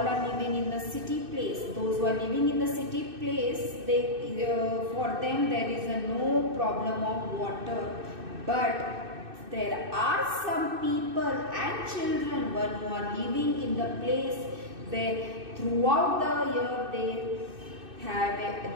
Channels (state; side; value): late; left; 2.6 ms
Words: living in the city place. Those who are living in the city place, for them there is no problem of water. But there are some people and children who are living in the place where throughout the year